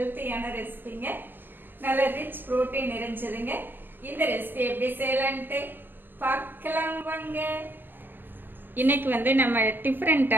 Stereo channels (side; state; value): left; late; 0.095 ms